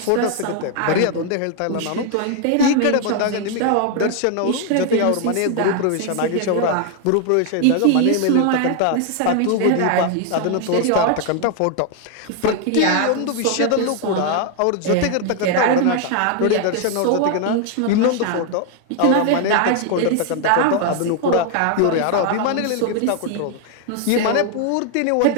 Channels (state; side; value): different; both; correlation 0.00